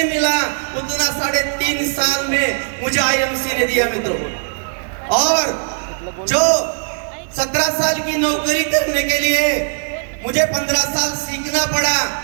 मिला उतना 3.5 साल में मुझे आईएमसी ने दिया मित्रों। और जो 17 साल की नौकरी करने के लिए मुझे 15 साल सीखना पड़ा,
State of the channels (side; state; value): left; silent; 67 dB below the other